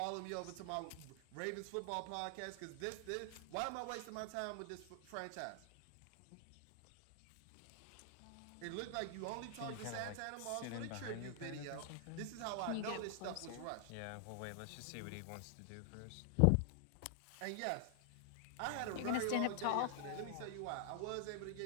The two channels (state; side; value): different; both; correlation 0.00